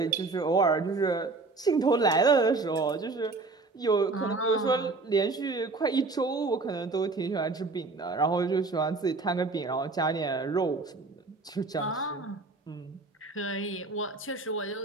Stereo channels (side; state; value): left; quieter; 3.7 dB